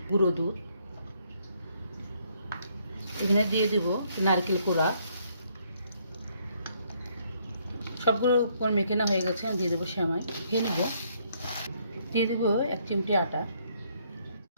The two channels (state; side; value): inverted; both; correlation -0.69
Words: গুঁড়ো দুধ। এখানে দিয়ে দেব নারকেল কোড়া। সবগুলো উপর মেখে না হয়ে গেছে, আমি দিয়ে দেবো সেমাই। খেয়ে নেব। দিয়ে দেবো 1 চিমটি আটা।